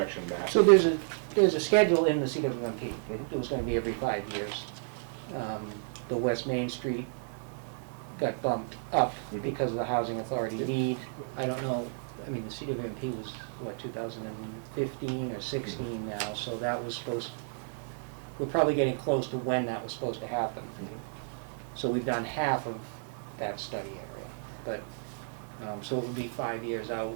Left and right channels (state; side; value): silent; left; digital silence